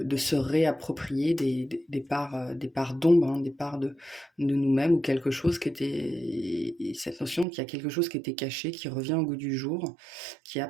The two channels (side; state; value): left; drops out; at 7.5 s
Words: se réapproprier des parts d'ombre, hein, des parts de nous-mêmes ou quelque chose qui était. Cette notion qu'il y a quelque chose qui était caché, qui revient au goût du jour, qui